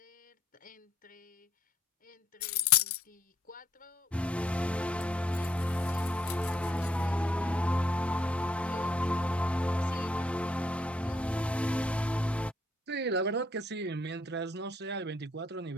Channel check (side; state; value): both; normal; correlation 0.70